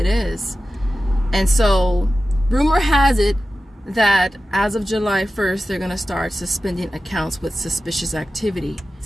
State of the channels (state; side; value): normal; both; correlation 0.93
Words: is. And so rumor has it that as of July 1st, they're going to start suspending accounts with suspicious activity.